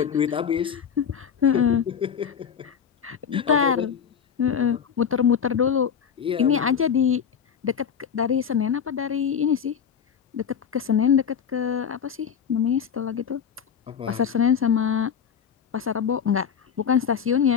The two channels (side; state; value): right; quieter; 7.6 dB